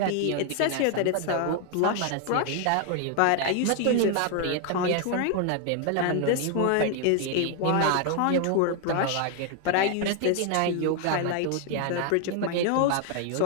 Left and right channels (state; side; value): different; both; correlation 0.01